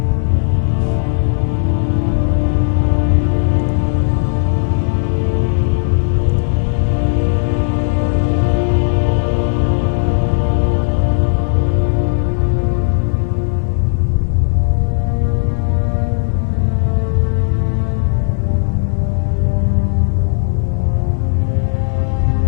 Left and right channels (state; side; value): silent; right; digital silence